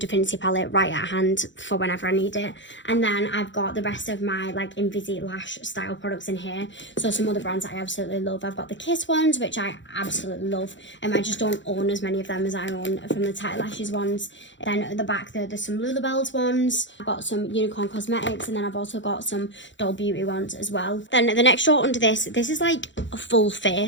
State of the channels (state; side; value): late; right; 0.54 ms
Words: palette right at hand for whenever I need it. And then I've got the rest of my like Invisi lash style products in here, so some other brands that I absolutely love. I've got the Kiss ones, which I absolutely love, and I just don't own as many of them as I own from the Tight Lashes ones. Then at the back there's some Bells ones. I've got some Unicorn Cosmetics, and then I've also got some Doll Beauty ones as well. Then the next drawer under this is like a full